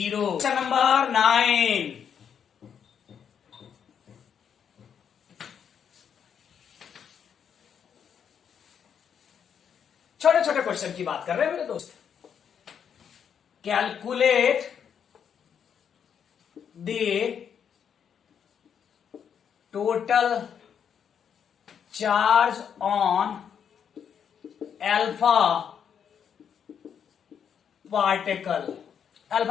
क्वेश्चन नंबर 9 छोटे छोटे क्वेश्चन की बात कर रहे हैं मेरे दोस्त। Calculate the total charge on alpha particle.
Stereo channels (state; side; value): quieter; right; 7.9 dB